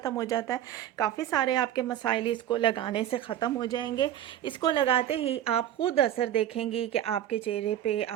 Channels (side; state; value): left; quieter; 11.3 dB